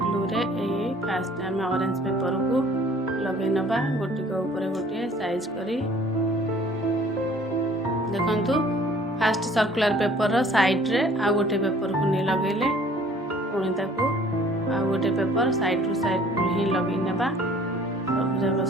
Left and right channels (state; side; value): normal; both; correlation 0.54